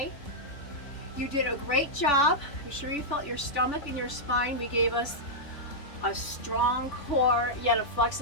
You did a great job. I'm sure you felt your stomach and your spine. We gave us a strong core, yet a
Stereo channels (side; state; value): right; late; 3.4 ms